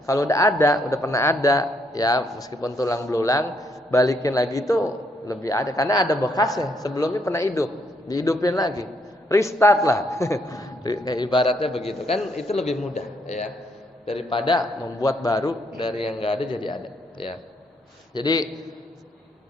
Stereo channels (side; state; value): both; normal; correlation 0.72